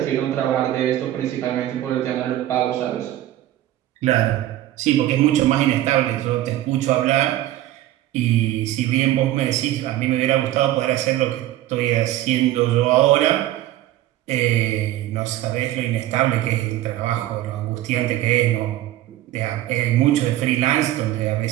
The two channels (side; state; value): left; quieter; 14.2 dB